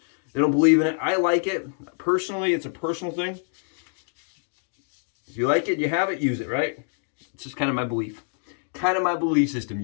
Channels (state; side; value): silent; right; 61 dB below the other